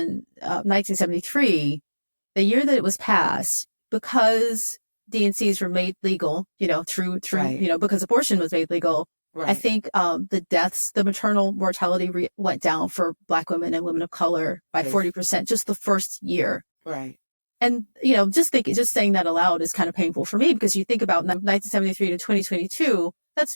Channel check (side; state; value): both; inverted; correlation -1.00